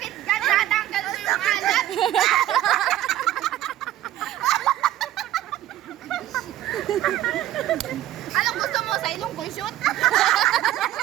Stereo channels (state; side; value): quieter; left; 13.5 dB